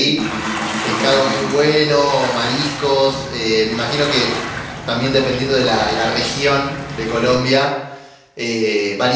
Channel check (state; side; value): identical; both; correlation 1.00